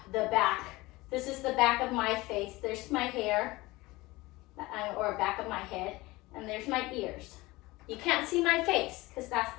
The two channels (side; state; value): right; quieter; 20.8 dB